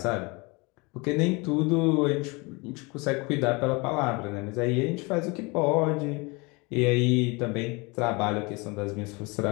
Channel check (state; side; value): quieter; right; 27.3 dB